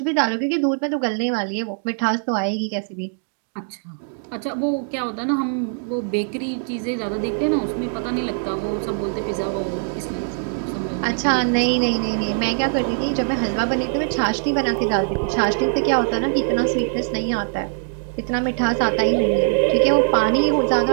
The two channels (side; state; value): left; silent; digital silence